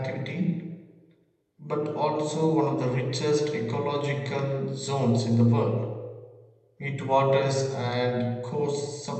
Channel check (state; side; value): identical; both; correlation 1.00